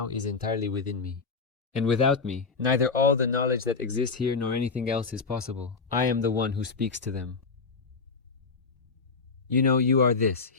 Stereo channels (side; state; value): right; quieter; 4.6 dB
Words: is entirely within me. And without me, neither all the knowledge that exists here nor anything else is possible. I am the one who speaks to them. You know, you are this,